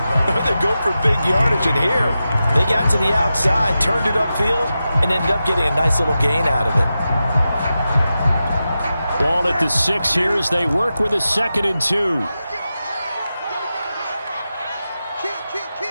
or they go for big yardage. And here, they got to the outside, turned it upfield, and ended up getting a nice little gain out of it. Ball at the 6 here as they work with a 2nd and 2.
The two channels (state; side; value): inverted; both; correlation -0.91